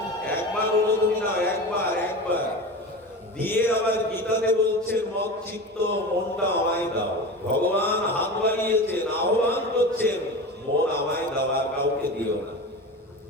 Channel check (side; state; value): both; normal; correlation 0.29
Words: একবার হলো তুমি নাও, একবার দিয়ে আবার গীতাতে বলছেন মত চিত্ত মনটা আমায় দাও। ভগবান হাত বাড়িয়েছেন, আহ্বান করছেন, মন আমায় দাও, আর কাউকে দিও না।